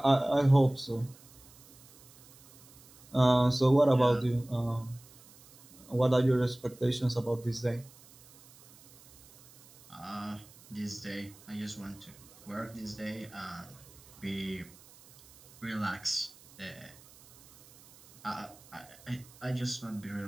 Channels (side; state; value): right; noise; hiss, 24 dB below the sound